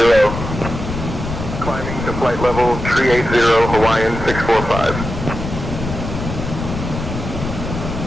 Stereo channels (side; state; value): left; noise; rumble, 6 dB below the sound